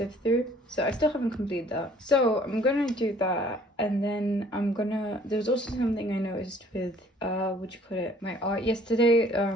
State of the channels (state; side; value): normal; both; correlation 0.56